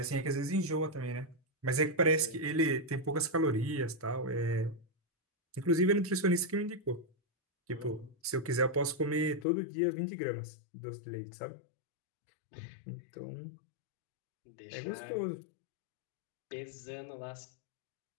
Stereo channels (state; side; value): drops out; right; at 9.5 s